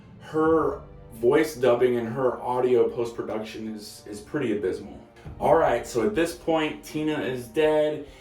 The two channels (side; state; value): both; identical; correlation 1.00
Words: Her voice dubbing and her audio post-production is pretty abysmal. Alright, so at this point, Tina is dead,